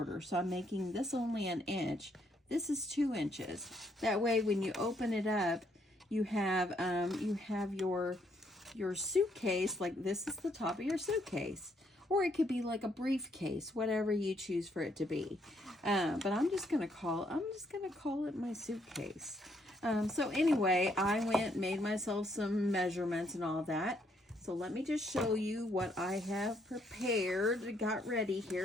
So I'm making this only 1 inch. This is 2 inches. That way, when you open it up, you have your suitcase, like this is the top of your suitcase. Or it could be like a briefcase, whatever you choose for it to be. But I'm just gonna call it my suitcase. So anyway, I made myself some measurements and all that. So let me just show you what I have prepared, got ready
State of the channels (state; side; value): normal; both; correlation 0.72